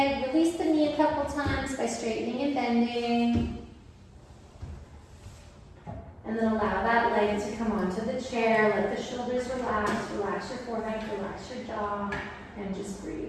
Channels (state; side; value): identical; both; correlation 1.00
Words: Release the knee a couple times by straightening and bending. And then allow that leg to come onto the chair. Let the shoulders relax. Relax your forehead, relax your jaw, and just breathe.